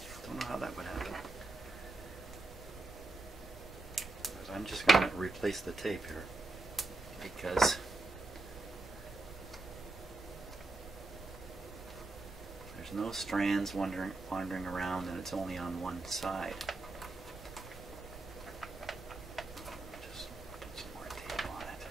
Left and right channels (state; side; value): quieter; left; 3.1 dB